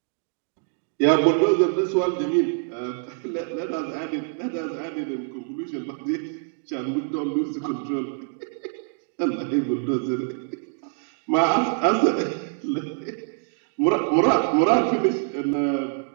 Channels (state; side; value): silent; left; 62 dB below the other